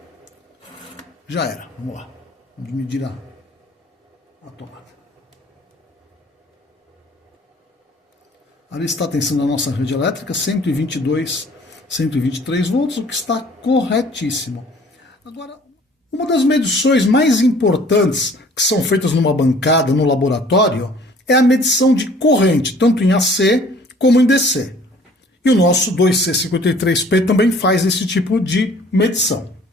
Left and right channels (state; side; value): normal; both; correlation 0.53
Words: já era. Vamos lá. Vamos medir a tomada. Ali está a tensão da nossa rede elétrica, 122, 123 volts, o que está corretíssimo. Agora, uma das medições mais importantes que são feitas numa bancada, no laboratório, é a medição de corrente, tanto em AC como em DC. E o nosso 2C53P também faz esse tipo de medição.